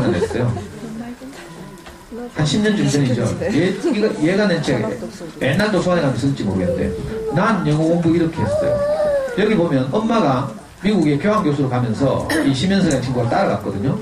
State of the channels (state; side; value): identical; both; correlation 1.00